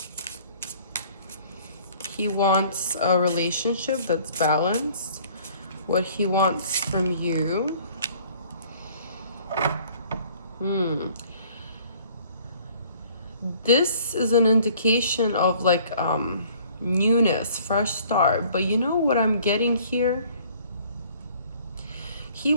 He wants a relationship that's balanced. What he wants from you. This is an indication of like newness, fresh start. But you know what I'm getting here? He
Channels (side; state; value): both; inverted; correlation -0.55